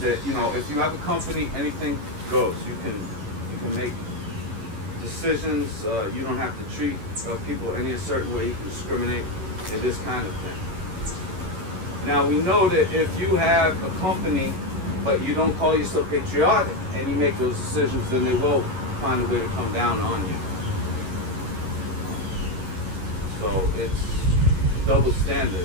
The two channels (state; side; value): late; left; 11 ms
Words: if you have a company, anything goes. You can make decisions. You don't have to treat people any certain way. You can discriminate and this kind of thing. Now we know that if you have a company, but you don't call yourself patriotic, and you make those decisions, then they will find a way to come down on you. So it's double